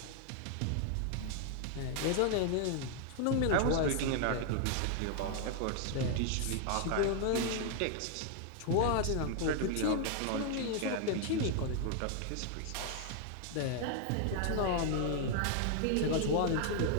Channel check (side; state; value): both; different; correlation 0.00